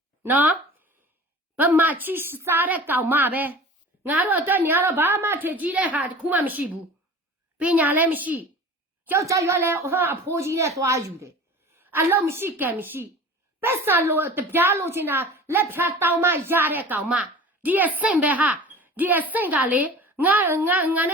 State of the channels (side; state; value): both; normal; correlation 0.39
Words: နော်ဗမာချီးစားတဲ့ကောင်မပဲငါတို့အတွက်နေရတော့ဘာမှထင်ကြီးတဲ့ဟာတခုမှမရှိဘူးပညာလည်းမရှိကြောက်ကြရွက်လဲဟာအဖိုးကြီးနဲ့သွားယူတယ်အလုံးမရှိကံမရှိပက်ဆာလို့တပြားလို့ချင်တာလက်ဖြာတောင်းမရတဲ့ကောင်မဒီအဆင့်ပဲဟာဒီအဆင့်ကလေငါန